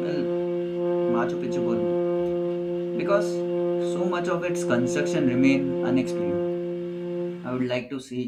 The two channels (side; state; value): both; identical; correlation 1.00